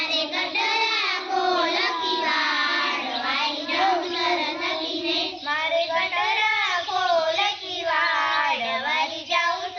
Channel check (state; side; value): identical; both; correlation 1.00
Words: गटरा खोल की वाड़, वारी जाऊं सरस्वती ने, मारे गटरा खोल की वाड़, वारी जाऊं